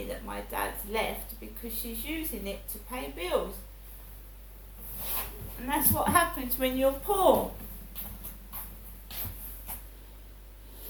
that my dad's left because she's using it to pay bills. And that's what happens when you're poor.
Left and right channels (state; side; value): identical; both; correlation 1.00